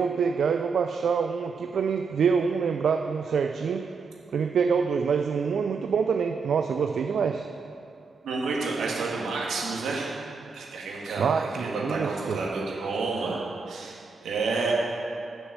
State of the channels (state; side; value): quieter; left; 5.1 dB